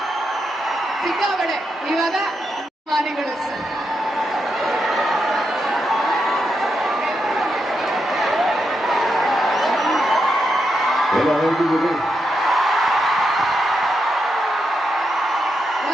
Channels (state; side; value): normal; both; correlation 0.84